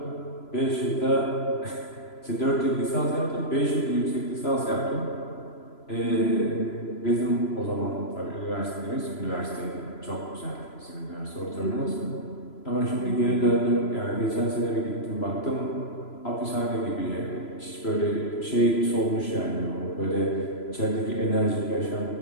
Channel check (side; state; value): right; late; 3.0 ms